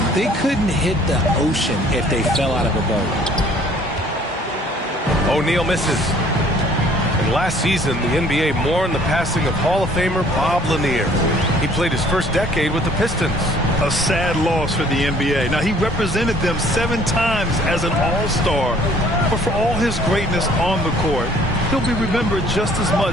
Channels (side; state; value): both; normal; correlation 0.57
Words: They couldn't hit the ocean if they fell out of a boat. O'Neal misses. And last season, the NBA mourned the passing of Hall of Famer Bob Lanier. He played his first decade with the Pistons. A sad loss for the NBA. Now, he represented them 7 times as an all-star. But for all his greatness on the court, he'll be remembered just as